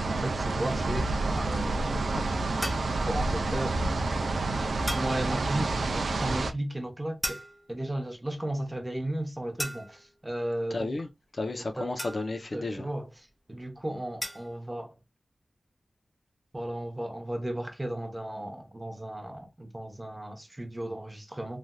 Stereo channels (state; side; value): normal; both; correlation 0.94